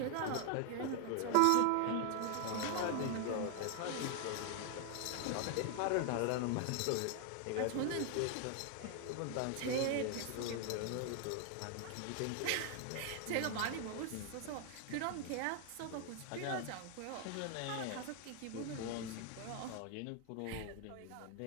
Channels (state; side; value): different; both; correlation 0.00